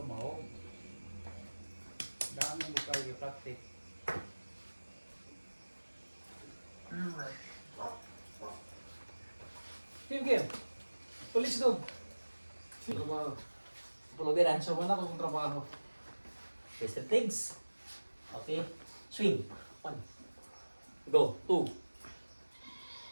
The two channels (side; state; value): both; inverted; correlation -1.00